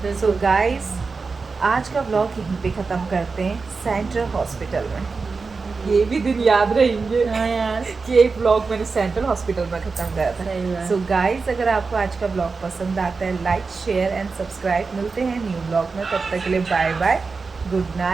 सो गाइस, आज का व्लॉग यहीं पे ख़त्म करते हैं, सेंट्रल हॉस्पिटल में। ये भी दिन याद रहेंगे हाँ यार, कि एक व्लॉग मैंने सेंट्रल हॉस्पिटल में ख़त्म करा था। सही बात। सो गाइस, अगर आपको आज का व्लॉग पसंद आता है, लाइक शेयर एंड सब्सक्राइब। मिलते हैं न्यू व्लॉग में, तब तक के लिए बाय बाय, गुड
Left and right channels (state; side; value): quieter; left; 4.5 dB